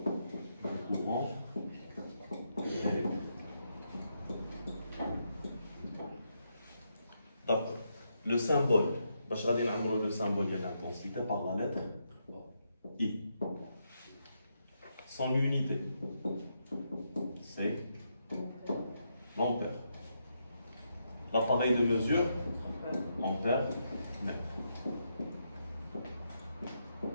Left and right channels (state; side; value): inverted; both; correlation -0.81